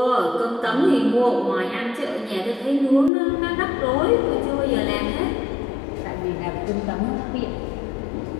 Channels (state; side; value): drops out; right; at 3.1 s